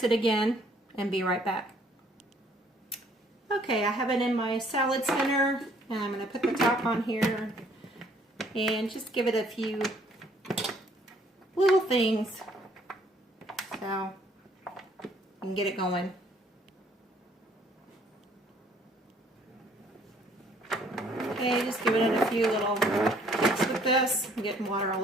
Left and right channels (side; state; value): both; normal; correlation 0.62